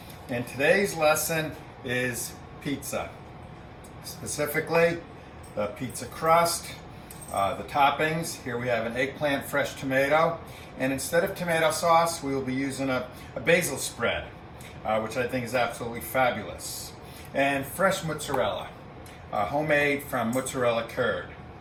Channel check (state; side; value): identical; both; correlation 1.00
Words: and today's lesson is pizza. Specifically, the pizza crust, the toppings. Here we have an eggplant fresh tomato, and instead of tomato sauce, we will be using a basil spread, which I think is absolutely fabulous. And fresh mozzarella, homemade from mozzarella curd.